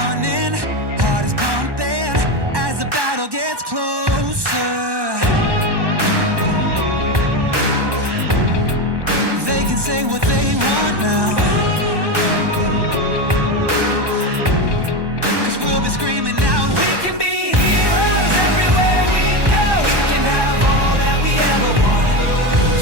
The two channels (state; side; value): late; left; 1.1 ms